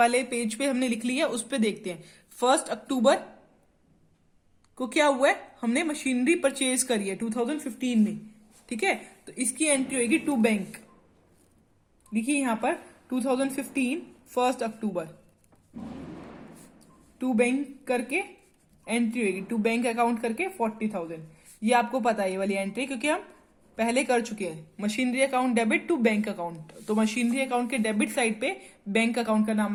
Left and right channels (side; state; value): both; identical; correlation 1.00